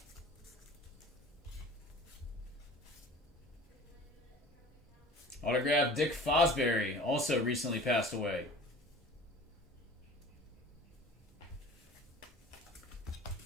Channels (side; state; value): both; normal; correlation 0.43